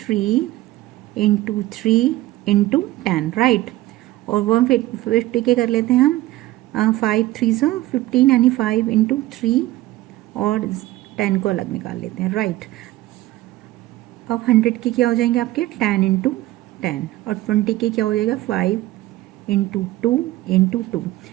इंटू 3 इंटू 10, राइट। और 150 के कर लेते हैं हम 5 3 से 15 यानी 5 इंटू 3 और 10 को अलग निकाल लेते हैं, राइट। अब 100 के क्या हो जाएंगे आपके 10 इंटू 10 और 20 के क्या हो जाएगा 5 इंटू 2 इंटू 2।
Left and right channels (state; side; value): quieter; left; 16.7 dB